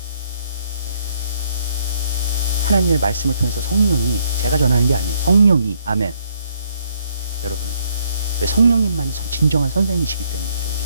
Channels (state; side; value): inverted; both; correlation -0.69